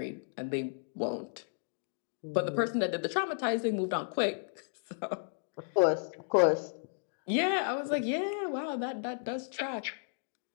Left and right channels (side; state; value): right; silent; digital silence